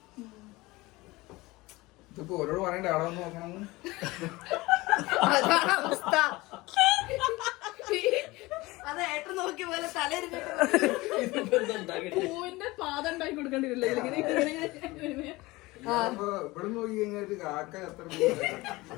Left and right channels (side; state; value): right; quieter; 21.2 dB